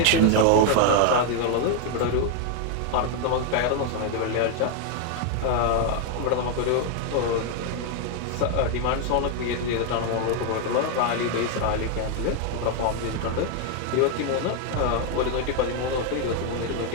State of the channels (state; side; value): different; both; correlation 0.00